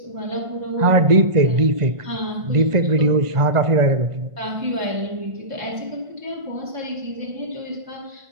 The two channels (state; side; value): late; left; 1.5 ms